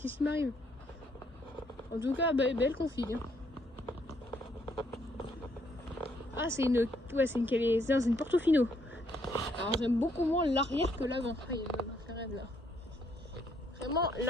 qui m'arrive? En tout cas, belle config. Hein. Ah, c'est une. Ouais, c'est une Portofino. Alors, j'aime beaucoup moins l'arrière que l'avant. Ah, il y a une McLaren là. Vraiment,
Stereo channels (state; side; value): normal; both; correlation 0.70